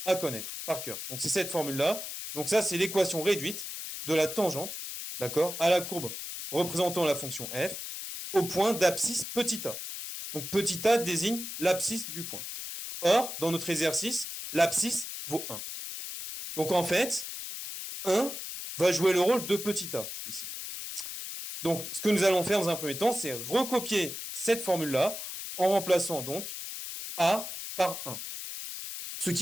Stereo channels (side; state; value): left; noise; hiss, 7 dB below the sound